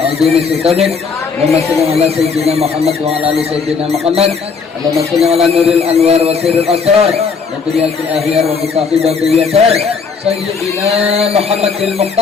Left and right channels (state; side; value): quieter; right; 5.3 dB